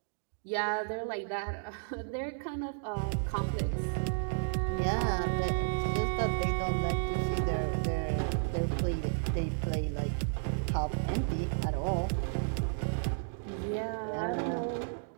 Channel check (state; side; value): silent; left; digital silence